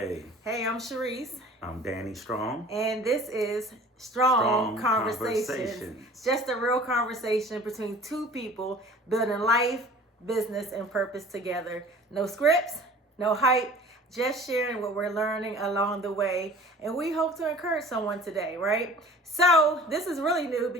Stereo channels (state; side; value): normal; both; correlation 0.46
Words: Hey, I'm Shareese. I'm Danny Strong. And this is Strong Conversations. Conversations. Just a real conversation between two people building life, business, and purpose together. No scripts, no hype, just sharing what we're learning along the way. And we hope to encourage someone today, right? So this is really new